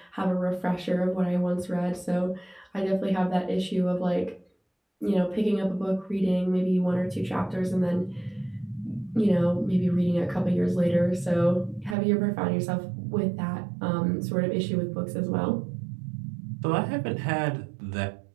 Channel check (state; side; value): drops out; left; at 12.0 s